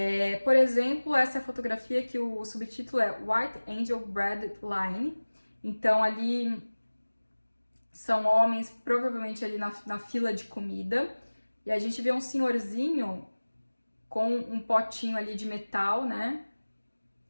Por exemplo, essa é a fotografia que o subtítulo é White Angel Bread Line. Então ali são homens provavelmente ali na fila de comida. E a gente vê um senhorzinho com um potinho ali de metal, né?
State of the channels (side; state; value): both; inverted; correlation -1.00